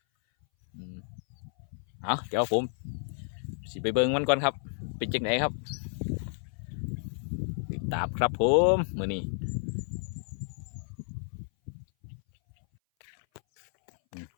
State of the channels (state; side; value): silent; right; 57 dB below the other